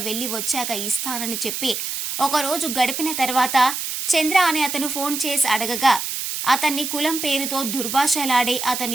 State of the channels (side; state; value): right; noise; hiss, 4 dB below the sound